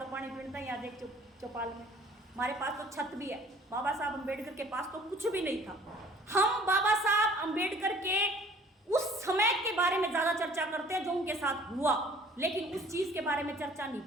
पानी पीता है। यहाँ देख चौपाल में हमारे पास तो छत भी है। बाबा साहब अम्बेडकर के पास तो कुछ भी नहीं था। हम बाबा साहब अम्बेडकर के उस समय के बारे में ज्यादा चर्चा करते हैं जो उनके साथ हुआ, लेकिन उस चीज के बारे में चर्चा नहीं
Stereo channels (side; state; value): both; normal; correlation 0.52